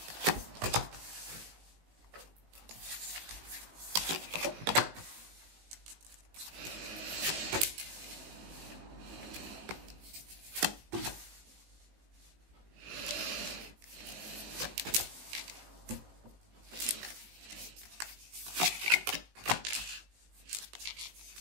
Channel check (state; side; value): late; left; 18 ms